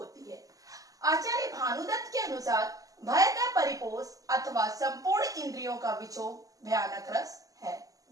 है। आचार्य भानुदत्त के अनुसार भय का परिपोष अथवा संपूर्ण इंद्रियों का विक्षोभ भयानक रस है।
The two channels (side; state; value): left; late; 0.17 ms